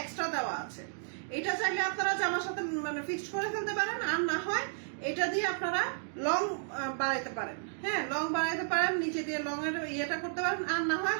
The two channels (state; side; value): silent; left; digital silence